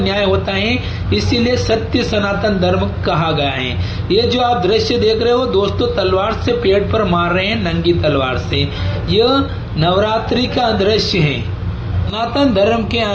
होता है, इसीलिए सत्य सनातन धर्म कहा गया है। ये जो आप दृश्य देख रहे हो दोस्तों, तलवार से पेट पर मार रहे हैं, नंगी तलवार से। यह नवरात्रि का दृश्य है। सनातन धर्म के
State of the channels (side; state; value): both; identical; correlation 1.00